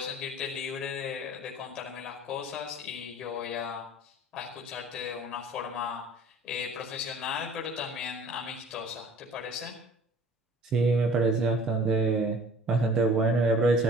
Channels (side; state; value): both; normal; correlation 0.49